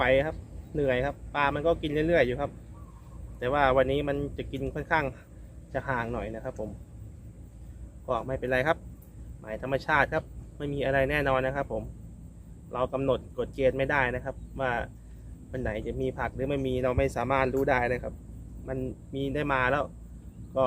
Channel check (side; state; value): both; identical; correlation 1.00